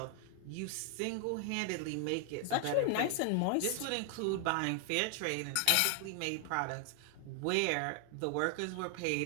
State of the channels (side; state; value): both; different; correlation 0.00